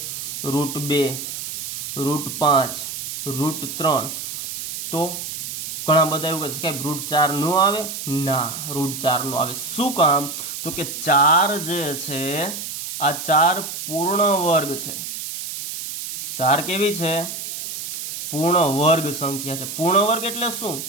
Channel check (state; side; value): noise; right; hiss, 7 dB below the sound